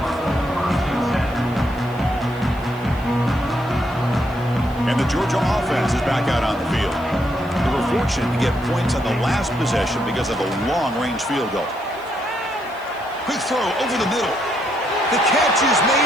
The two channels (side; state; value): right; noise; hiss, 27 dB below the sound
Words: And the Georgia offense is back out on the field. They were fortunate to get points on the last possession because of a long-range field goal. Quick throw over the middle. The catch is